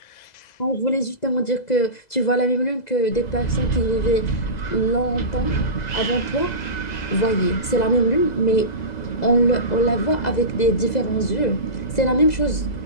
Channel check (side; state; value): right; late; 2.0 ms